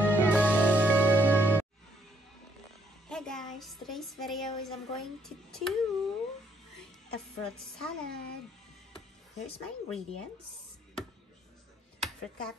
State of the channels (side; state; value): both; normal; correlation 0.71